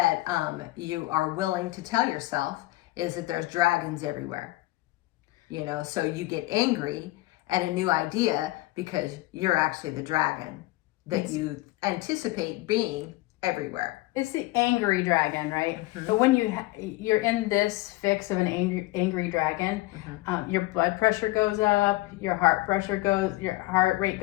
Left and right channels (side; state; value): right; quieter; 19.4 dB